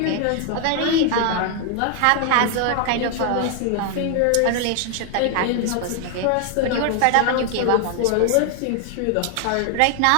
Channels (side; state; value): both; different; correlation 0.00